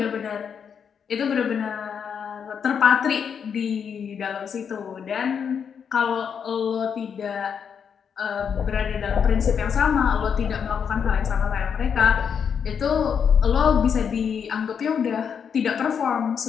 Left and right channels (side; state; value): right; quieter; 7.1 dB